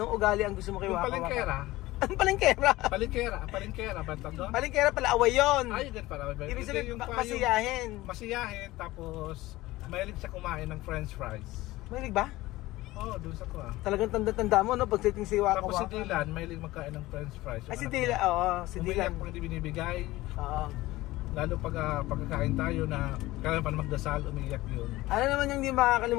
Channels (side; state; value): right; quieter; 18.2 dB